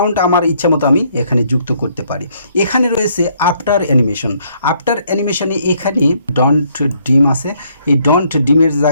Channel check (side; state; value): both; inverted; correlation -0.68